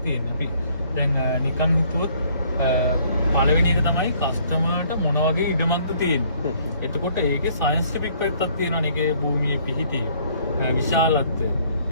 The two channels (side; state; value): both; inverted; correlation -0.62